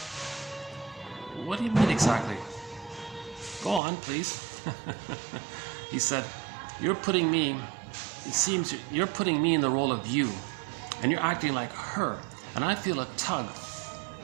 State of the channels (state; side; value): drops out; left; at 3.8 s